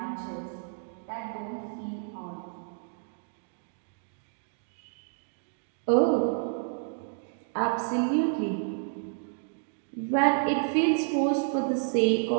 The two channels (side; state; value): left; silent; digital silence